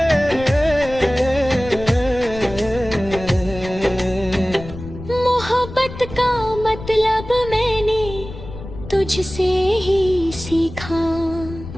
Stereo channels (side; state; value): left; noise; rumble, 12 dB below the sound